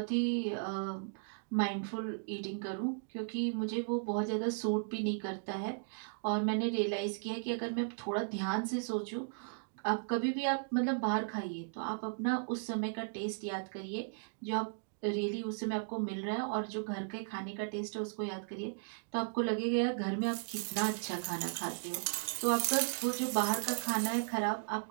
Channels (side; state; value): left; silent; digital silence